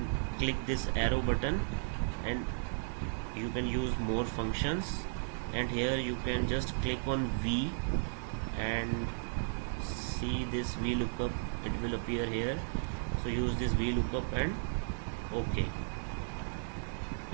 click this arrow button and you can use more functions, and here you can just click on V and see this VLOOKUP, it will appear here. So use this VLOOKUP and OK.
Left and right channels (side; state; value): left; silent; 55 dB below the other